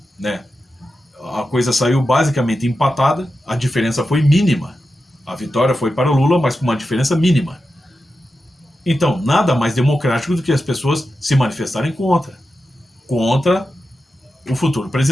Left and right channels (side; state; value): both; normal; correlation 0.91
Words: né, a coisa saiu basicamente empatada, a diferença foi mínima. A vitória foi para o Lula, mas com uma diferença mínima. Então, nada mais democrático do que as pessoas se manifestarem contra o futuro